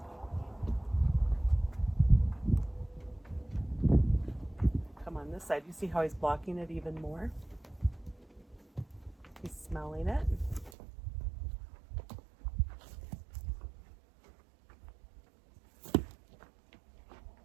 Come on this side. You see how he's blocking it even more? He's smelling it.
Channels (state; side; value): drops out; left; at 10.7 s